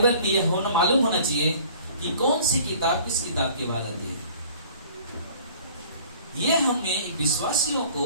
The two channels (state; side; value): inverted; both; correlation -0.51